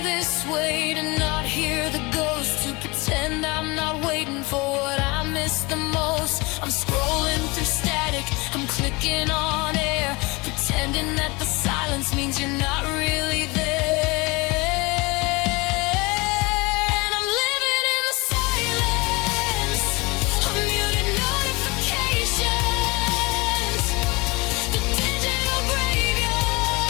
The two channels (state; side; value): quieter; right; 25.2 dB